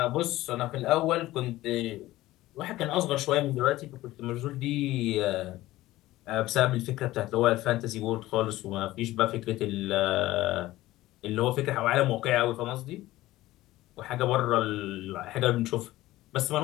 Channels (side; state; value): right; quieter; 16.8 dB